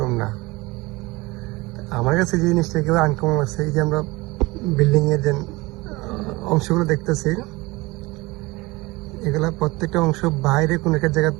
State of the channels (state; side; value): quieter; left; 22.4 dB